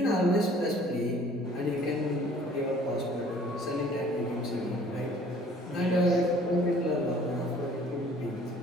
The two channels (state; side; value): normal; both; correlation 0.54